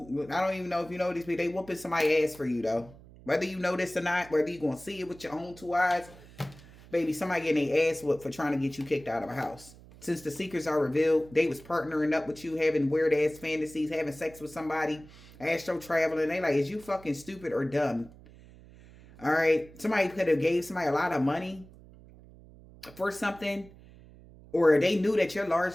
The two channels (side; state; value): right; noise; hum, 21 dB below the sound